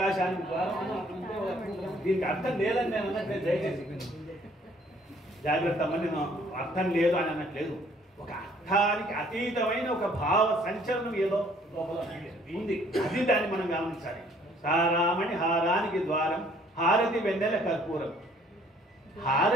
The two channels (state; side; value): normal; both; correlation 0.60